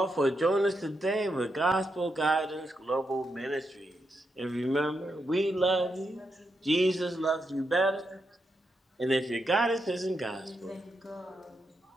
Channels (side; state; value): both; normal; correlation 0.83